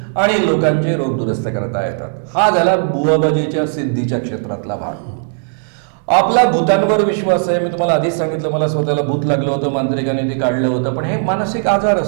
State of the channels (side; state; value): left; silent; digital silence